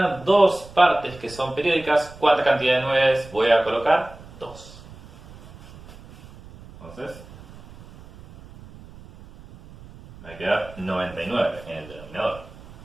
dos partes que son periódicas, ¿cuánta cantidad de 9 voy a colocar? 2. Entonces, me va a quedar 99 en el denominador.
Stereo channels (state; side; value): noise; right; rumble, 19 dB below the sound